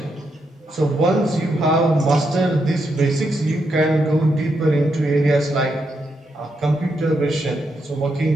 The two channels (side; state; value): both; normal; correlation 0.81